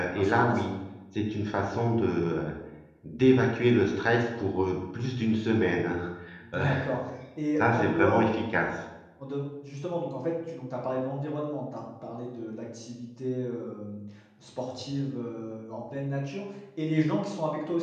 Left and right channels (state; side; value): identical; both; correlation 1.00